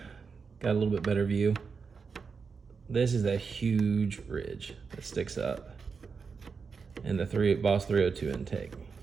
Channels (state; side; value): quieter; left; 5.4 dB